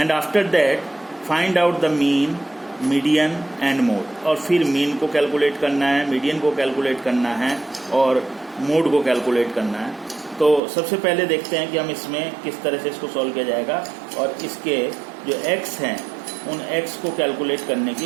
after that find out the mean, median and mode. और फिर मीन को कैलकुलेट करना है, मीडियन को कैलकुलेट करना है और मोड को कैलकुलेट करना है। तो सबसे पहले देखते हैं कि हम इसमें किस तरह से इसको सॉल्व किया जाएगा, और इसके जो x हैं उन x को कैलकुलेट करने की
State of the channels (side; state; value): left; drops out; at 10.6 s